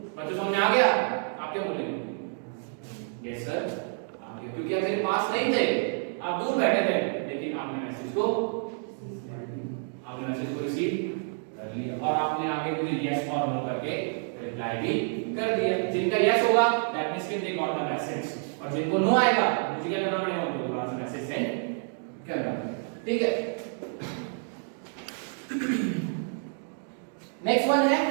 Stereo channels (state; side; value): silent; left; 59 dB below the other